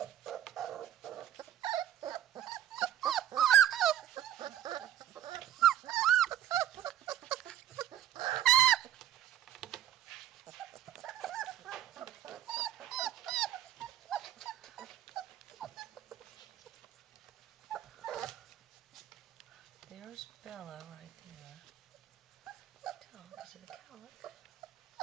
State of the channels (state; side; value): quieter; left; 11.2 dB